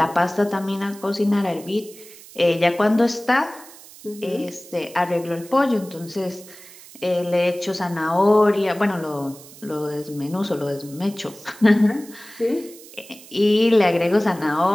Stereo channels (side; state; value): right; noise; hiss, 20 dB below the sound